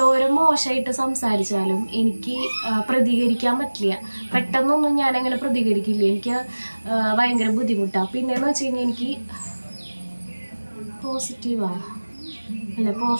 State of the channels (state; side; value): inverted; both; correlation -1.00